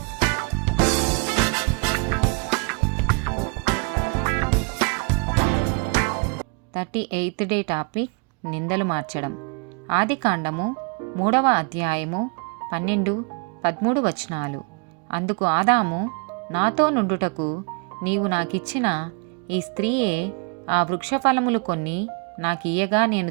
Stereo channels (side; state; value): left; quieter; 34.3 dB